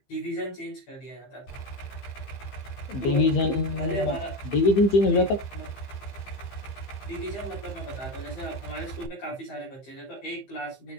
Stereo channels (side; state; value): right; late; 15 ms